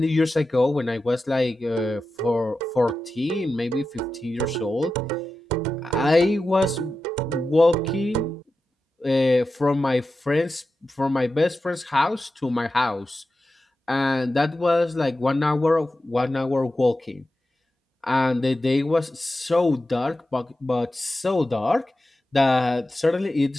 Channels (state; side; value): normal; both; correlation 0.92